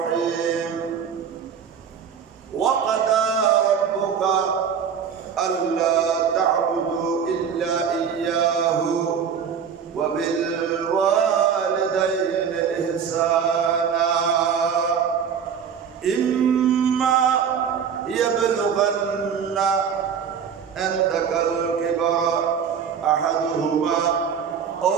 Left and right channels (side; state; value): left; quieter; 7.3 dB